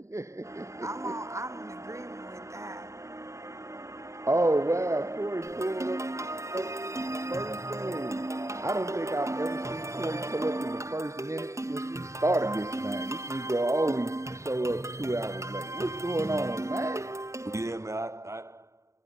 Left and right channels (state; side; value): late; left; 0.14 ms